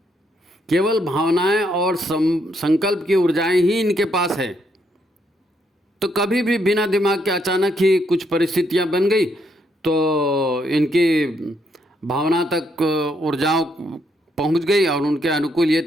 केवल भावनाएं और संकल्प की ऊर्जाएं ही इनके पास है। तो कभी भी बिना दिमाग के अचानक ही कुछ परिस्थितियां बन गई तो इनकी भावना तक ऊर्जाओं पहुंच गई और उनके अनुकूल ये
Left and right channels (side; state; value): both; normal; correlation 0.75